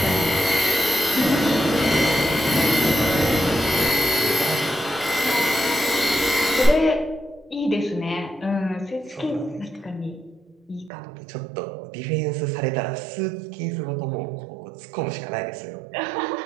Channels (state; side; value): drops out; left; at 10.9 s